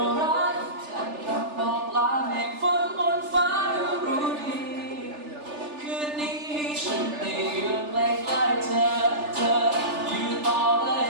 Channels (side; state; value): left; late; 3.4 ms